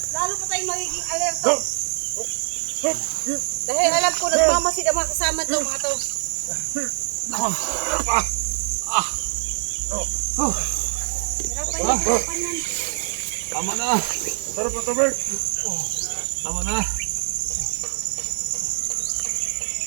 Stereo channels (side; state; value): left; silent; digital silence